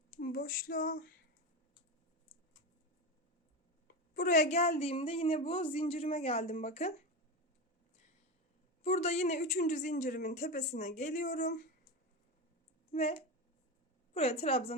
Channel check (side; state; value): both; normal; correlation 0.19